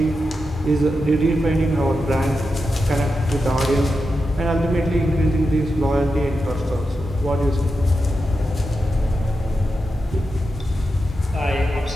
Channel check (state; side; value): normal; both; correlation 0.89